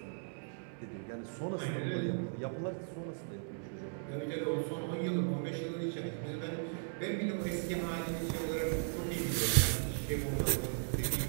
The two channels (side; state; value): left; silent; digital silence